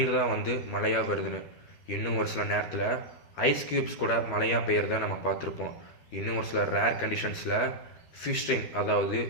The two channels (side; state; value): right; late; 13 ms